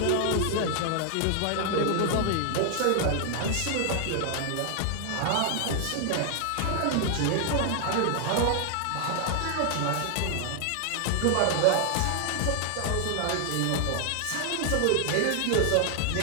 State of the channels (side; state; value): both; different; correlation 0.00